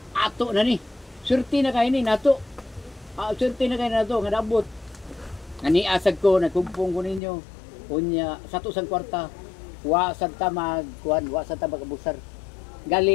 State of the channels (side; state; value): right; drops out; at 7.2 s